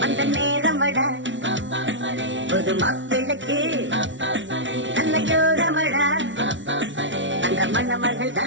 அந்த நேரமடா. புது மாப்பிள்ளைக்கு நல்ல யோகமடா, அந்த மண்ண மகள்தா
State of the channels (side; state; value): left; late; 0.55 ms